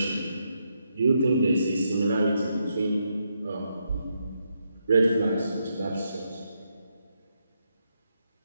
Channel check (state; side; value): inverted; both; correlation -0.81